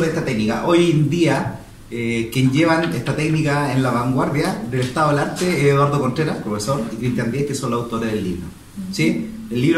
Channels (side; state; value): both; identical; correlation 1.00